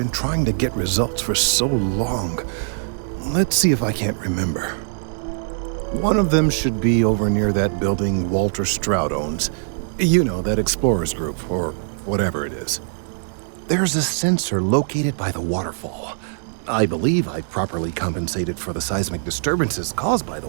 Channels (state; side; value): silent; left; digital silence